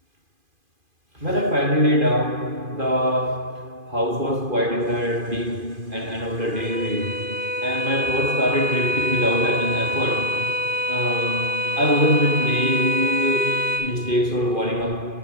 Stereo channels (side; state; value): left; late; 2.5 ms